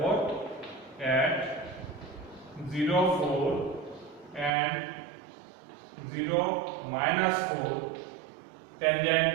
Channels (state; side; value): drops out; left; at 4.5 s